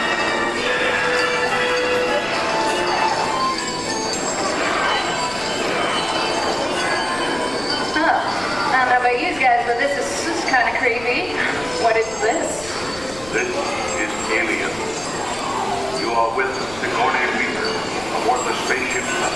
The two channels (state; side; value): noise; left; rumble, 18 dB below the sound